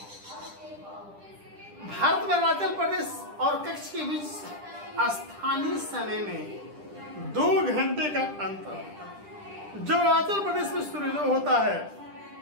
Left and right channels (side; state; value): left; late; 10 ms